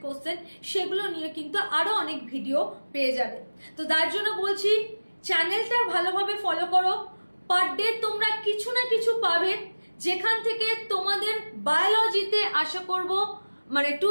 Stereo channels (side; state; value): both; inverted; correlation -1.00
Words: কোশ্চেন, সেগুলো নিয়ে কিন্তু আরো অনেক ভিডিও পেয়ে যাবে। তো তার জন্য বলছি চ্যানেলটা ভালোভাবে ফলো করো, পার ডে তোমরা কিছু না কিছু পাবে, যেখান থেকে তোমাদের বায়োলজিতে আশা করব মানে